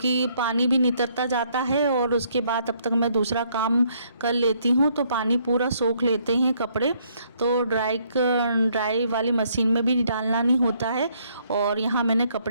पानी भी नितरता जाता है और उसके बाद तब तक मैं दूसरा काम कर लेती हूँ, तो पानी पूरा सोख लेते हैं कपड़े। तो ड्राई वाली मशीन में भी डालना नहीं होता है। और यहाँ मैंने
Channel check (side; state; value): both; inverted; correlation -0.69